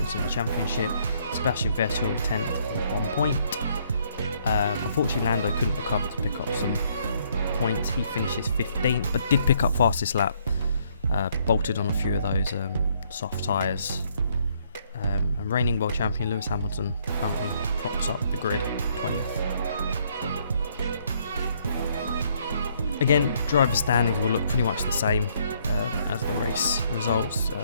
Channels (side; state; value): both; inverted; correlation -0.68